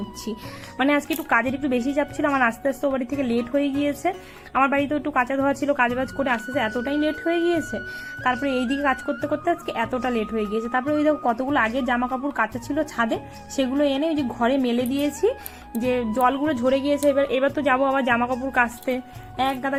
মানে আজকে একটু কাজের একটু বেশি চাপ ছিল আমার, আস্তে আস্তে ও বাড়ি থেকে লেট হয়ে গিয়েছে। আমার বাড়িতেও একটু কাঁচা ধোয়া ছিল, কাজবাজ করে আস্তে আস্তে এতটাই লেট হয়ে গিয়েছে। তারপরে এইদিকে কাজ করতে করতে আজকে এতটা লেট হয়ে গিয়েছে। তারপরে ওই দেখো কতগুলো আগে জামা কাপড় কাঁচা ছিল ছাদে, সেগুলো এনে ওই যে ঘরে মেলে দিয়েছি, যে জলগুলো ঝরে গিয়েছে। এবার তো যাবো আবার জামা কাপড় কাচতে, এক গাদা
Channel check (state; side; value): identical; both; correlation 1.00